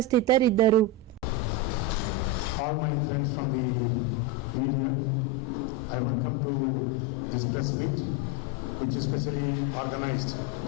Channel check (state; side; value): normal; both; correlation 0.12